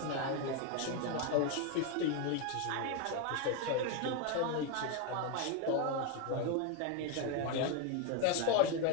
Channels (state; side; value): different; both; correlation 0.01